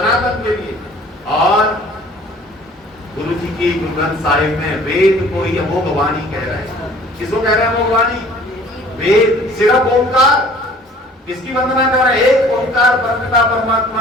के लिए। और गुरु जी की गुरु ग्रंथ साहिब में वेद को ही अमोघ वाणी कह रहे हैं। किसको कह रहे हैं अमोघ वाणी? वेद, सिर्फ ओंकार। किसकी वंदना कर रहे हैं? एक ओंकार परमपिता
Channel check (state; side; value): normal; both; correlation 0.51